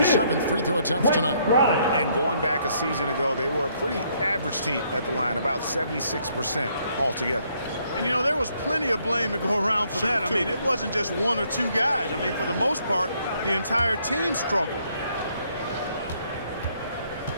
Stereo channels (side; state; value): both; inverted; correlation -0.69